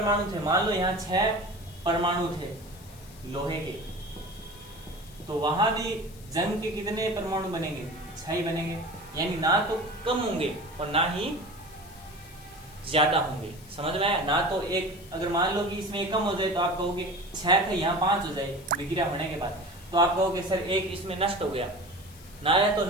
थे, मान लो यहाँ 6 परमाणु थे लोहे के, तो वहां भी जंग के कितने परमाणु बनेंगे? 6 ही बनेंगे। यानी ना तो कम होंगे और ना ही ज्यादा होंगे। समझ में आया? ना तो एक, अगर मान लो कि इसमें एक कम हो जाए तो आप कहोगे 6 थे यहाँ 5 हो जाए विक्रिया होने के बाद, तो आप कहोगे सर एक इसमें नष्ट हो गया। ना या तो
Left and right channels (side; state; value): left; noise; hiss, 22 dB below the sound